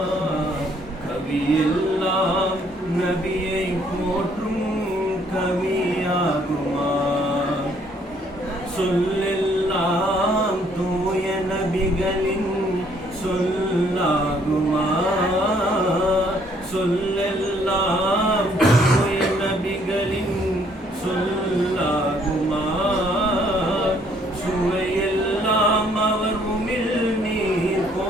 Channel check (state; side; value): normal; both; correlation 0.65